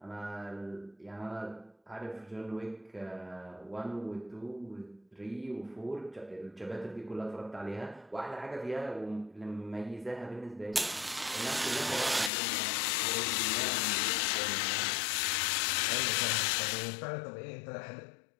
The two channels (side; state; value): right; drops out; at 12.3 s